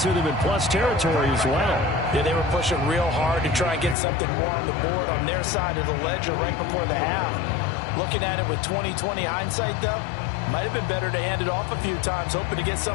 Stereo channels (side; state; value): right; drops out; at 4.0 s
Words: them in plus territory as well. Yeah, they were pushing real hard to try and get something more on the board on their side of the ledger right before the half. Looking at it with 20/20 hindsight, though, might have been better to hand it off a few times, hoping to get